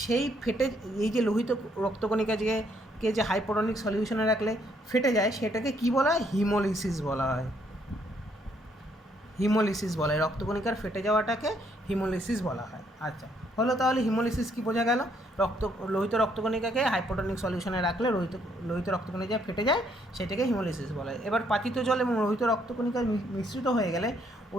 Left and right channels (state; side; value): normal; both; correlation 0.69